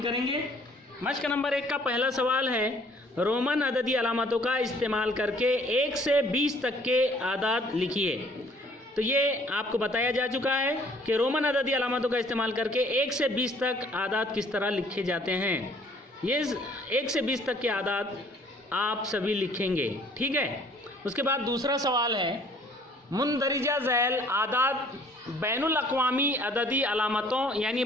मश्क नंबर 1 का पहला सवाल है, रोमन अददी अलामतों का इस्तेमाल करके 1 से 20 तक के आदाद लिखिए। तो ये आपको बताया जा चुका है कि रोमन अददी अलामतों का इस्तेमाल करके 1 से 20 तक आदाद किस तरह लिखे जाते हैं। ये 1 से 20 तक के आदाद आप सभी लिखेंगे, ठीक है। उसके बाद दूसरा सवाल है, मुंदरिजा झैल आदाद बैनुल अक़वामी अददी अलामतों यानी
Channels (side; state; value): both; normal; correlation 0.58